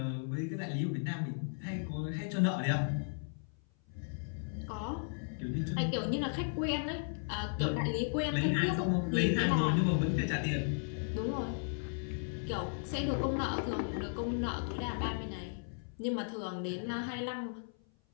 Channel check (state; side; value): silent; right; 54 dB below the other